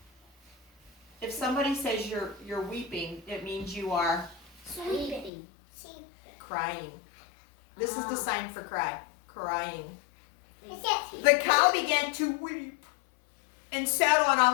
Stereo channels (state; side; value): drops out; right; at 5.3 s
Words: If somebody says you're weeping, it means you are sleeping. crying. This is the sign for cry. Crying. It's it. The cow began to weep and sat on